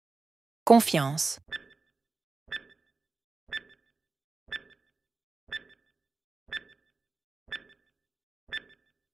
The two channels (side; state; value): left; quieter; 3.9 dB